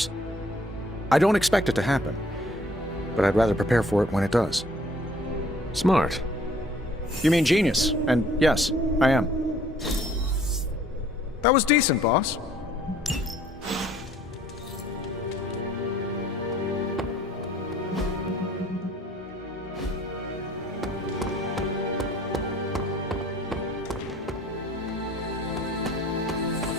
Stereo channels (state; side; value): normal; both; correlation 0.58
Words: I don't expect it to happen, but I'd rather prepare for it when it does. Smart. You mean genius, and yes, I am. That was decent, boss.